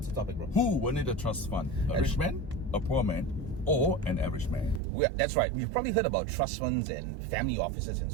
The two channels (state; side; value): drops out; left; at 4.8 s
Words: the topic, bro? Who will need a trust fund? A rich man, a poor man, or an average man? That's right. We've probably heard about trust funds and family offices and